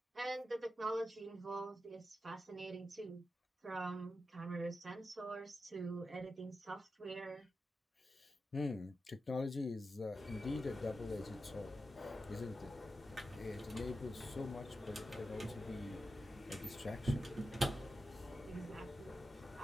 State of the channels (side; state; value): both; normal; correlation 0.90